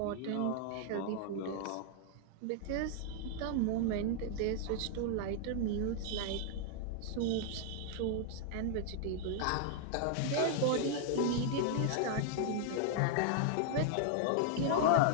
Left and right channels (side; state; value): both; different; correlation 0.00